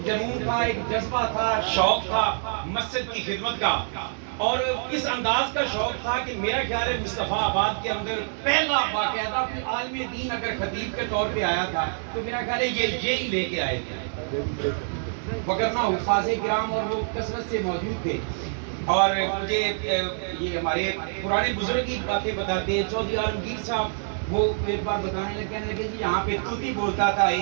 جنون تھا ایک جذبہ تھا شوق تھا مسجد کی خدمت کا اور اس انداز کا شوق تھا کہ میرا خیال ہے مصطفیٰ آباد کے اندر پہلا باقاعدہ کوئی عالم دین اگر خطیب کے طور پہ آیا تھا تو میرا خیال ہے یہی لے کے آئے تھے وگرنہ حفاظ کرام اور وہ کثرت سے موجود تھے. اور مجھے یہ ہمارے پرانے بزرگ کی باتیں بتاتے ہیں. چودھری عالمگیر صاحب وہ ایک بار بتانے لگے کہنے لگے جی یہاں پہ طوطی بولتا تھا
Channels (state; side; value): silent; left; digital silence